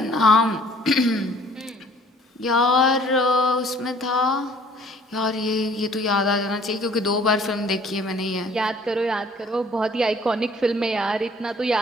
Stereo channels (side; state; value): both; normal; correlation 0.55